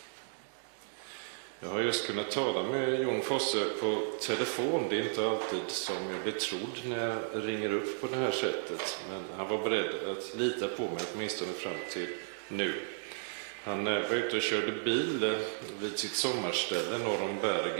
Jag har just kunnat tala med Jon Fosse på telefon. Det är inte alltid som jag blir trodd när jag ringer upp på det här sättet. Men han var beredd att lita på mig åtminstone fram till nu. Han var ute och körde bil vid sitt sommarställe norr om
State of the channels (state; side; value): silent; left; digital silence